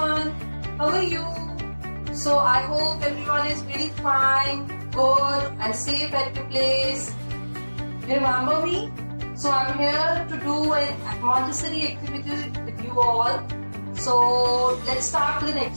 How are you? So I hope everyone is really fine, good and safe at your place. You remember me? So I'm here to do an Montessori activity with you all. So let's start with an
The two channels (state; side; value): inverted; both; correlation -1.00